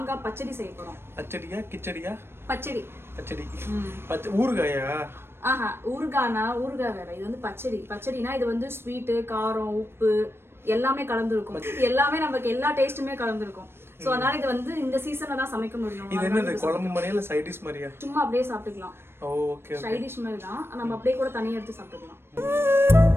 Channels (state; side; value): late; left; 0.12 ms